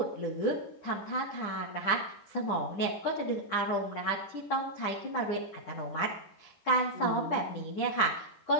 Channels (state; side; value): late; right; 9.9 ms